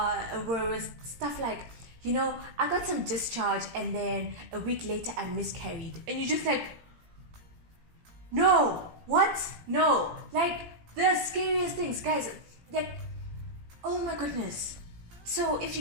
stuff like, I got some discharge, and then a week later I miscarried. And you're just like, no, what? No. Like, the scariest things, guys, like, oh my goodness. So if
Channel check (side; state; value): left; late; 17 ms